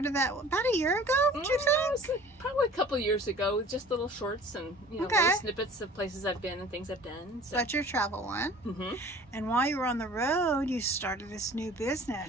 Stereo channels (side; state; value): both; normal; correlation 0.47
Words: that about a year ago, would you think? Probably a couple years ago, with just little shorts and little snippets of places I've been and things I've done. So that's your travel one. And while you were on the road, you started this new